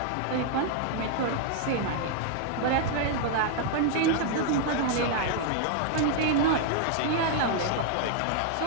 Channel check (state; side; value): different; both; correlation 0.00